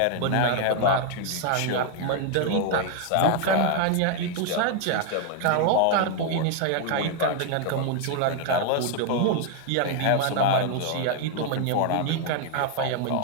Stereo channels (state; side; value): different; both; correlation 0.00